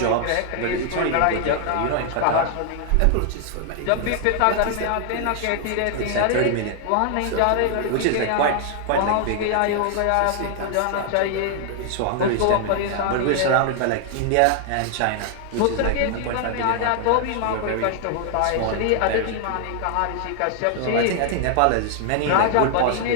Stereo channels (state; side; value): different; both; correlation 0.00